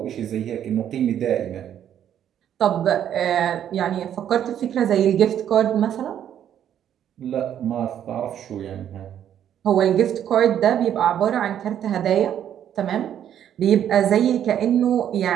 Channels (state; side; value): quieter; left; 10.0 dB